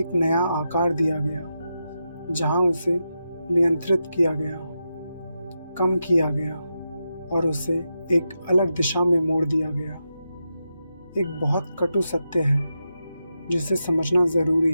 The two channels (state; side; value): inverted; both; correlation -0.87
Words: एक नया आकार दिया गया, जहाँ उसे नियंत्रित किया गया, कम किया गया और उसे एक अलग दिशा में मोड़ दिया गया। एक बहुत कटु सत्य है जिसे समझना